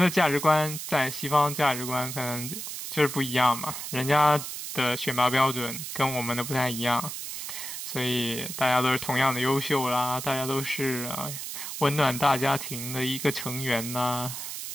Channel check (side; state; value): right; noise; hiss, 7 dB below the sound